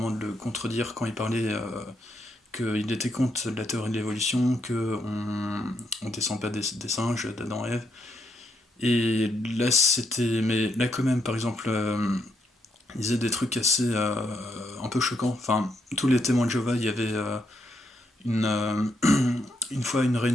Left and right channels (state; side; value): normal; both; correlation 0.77